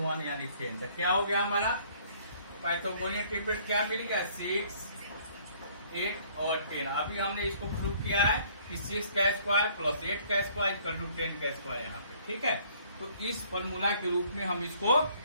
1 यानी 10। तो क्या हो गया हमारा पाइथागोरियन ट्रिपलेट क्या मिल गया 6, 8 और 10। अभी हमने इसको प्रूव किया है कि 6 का स्क्वायर प्लस 8 का स्क्वायर इक्वल टू 10 का स्क्वायर यहाँ पे। ठीक है, तो इस फॉर्मूला के रूप में हम इसको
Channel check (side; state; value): both; inverted; correlation -0.60